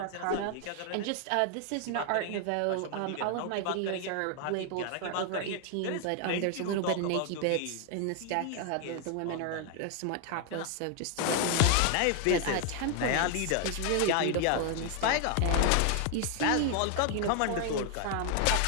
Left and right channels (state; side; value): different; both; correlation 0.00